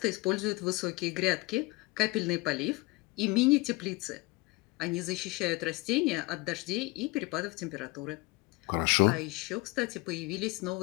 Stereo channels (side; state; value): right; quieter; 23.8 dB